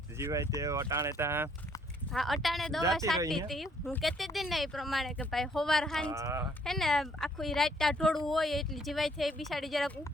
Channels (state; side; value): normal; both; correlation 0.65